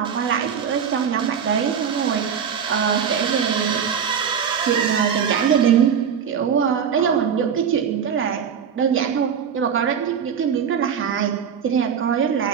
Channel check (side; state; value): left; quieter; 7.5 dB